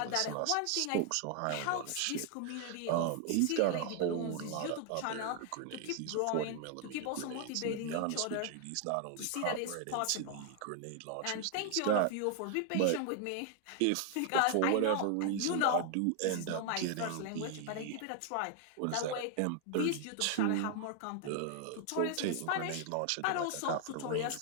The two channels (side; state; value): both; different; correlation 0.00